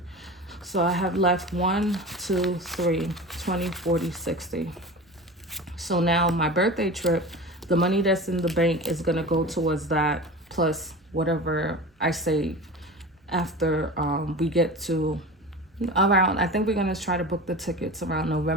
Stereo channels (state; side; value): normal; both; correlation 0.32